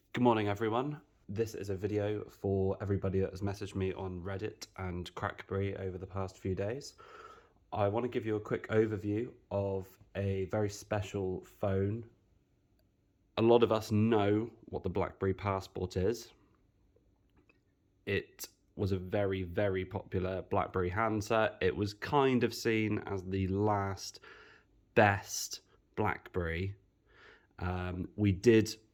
Good morning, everyone. This is a video for everybody that has messaged me on Reddit and Crackberry over the past few days. I want to give you a quick overview of a very special phone. A lot of us know what the BlackBerry Passport is. It was a very, very popular BlackBerry handset. It was kind of seen as the last best BlackBerry. We did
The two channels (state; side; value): identical; both; correlation 1.00